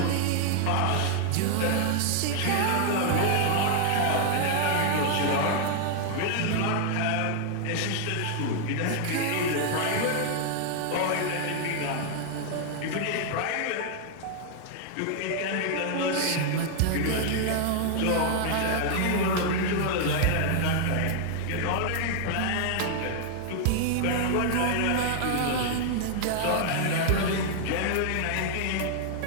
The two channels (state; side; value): different; both; correlation 0.00